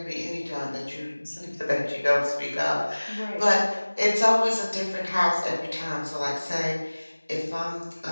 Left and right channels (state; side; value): inverted; both; correlation -1.00